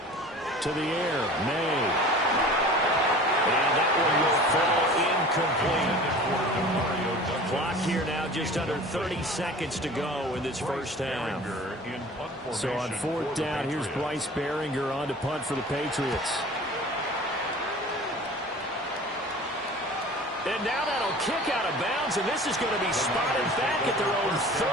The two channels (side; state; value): both; normal; correlation 0.42